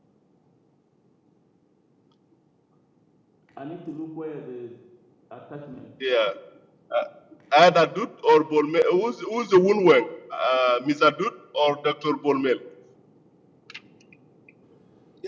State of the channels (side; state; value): both; identical; correlation 1.00